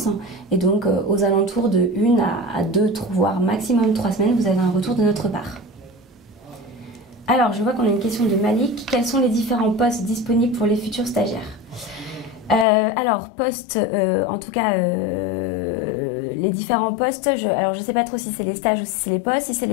Et donc, aux alentours de 1 à 2, voire maximum 3 semaines, vous avez un retour de notre part. Alors, je vois qu'on a une question de Malik. Quels sont les différents postes disponibles pour les futurs stagiaires ? Alors, postes, en tout cas, les différents postes, je ne sais pas trop si c'est les stages ou si c'est les postes. Si c'est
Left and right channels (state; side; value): drops out; right; at 12.7 s